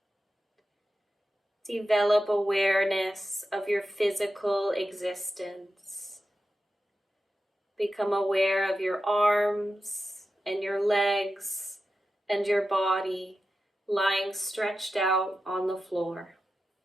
Develop awareness of your physical existence. Become aware of your arms and your legs and your body lying stretched out on the floor.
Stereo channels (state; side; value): normal; both; correlation 0.91